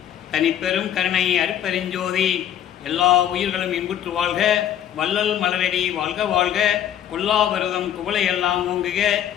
தனிப்பெரும் கருணை அருட்பெருஞ்சோதி. எல்லா உயிர்களும் இன்புற்று வாழ்க, வள்ளல் மலரடி வாழ்க வாழ்க, கொல்லா விரதம் குவளையெல்லாம் ஓங்குக,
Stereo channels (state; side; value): quieter; right; 10.4 dB